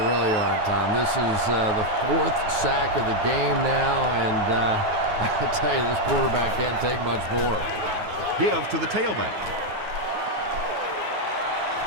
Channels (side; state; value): left; late; 9.5 ms